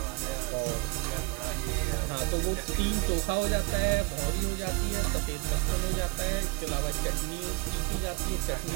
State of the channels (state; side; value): quieter; left; 27.5 dB